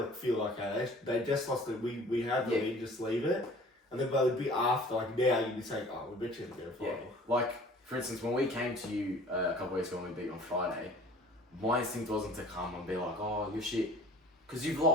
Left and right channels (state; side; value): normal; both; correlation 0.48